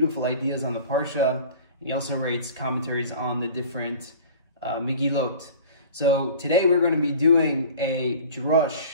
ideas on the Parsha. He also writes commentaries on the different Megillot. So today we're going to be doing a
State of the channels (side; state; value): both; inverted; correlation -0.42